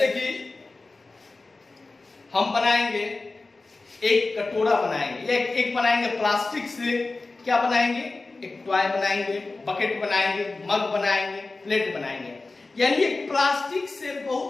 कि हम बनाएंगे एक कटोरा बनाएंगे, एक बनाएंगे प्लास्टिक से, क्या बनाएंगे, एक टॉय बनाएंगे, बकेट बनाएंगे, मग बनाएंगे, प्लेट बनाएंगे। यानी एक प्लास्टिक से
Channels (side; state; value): right; quieter; 3.5 dB